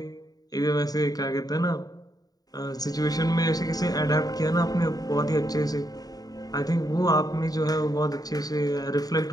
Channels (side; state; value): right; late; 0.18 ms